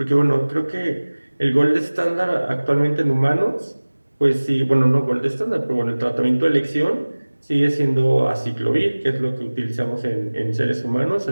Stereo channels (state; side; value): inverted; both; correlation -1.00